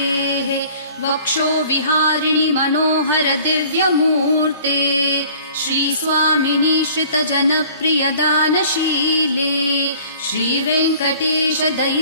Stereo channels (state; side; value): inverted; both; correlation -0.50